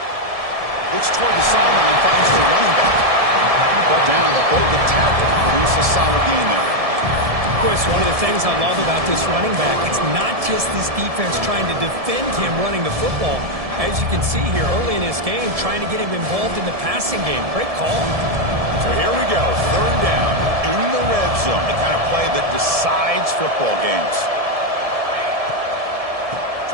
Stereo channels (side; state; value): left; late; 1.7 ms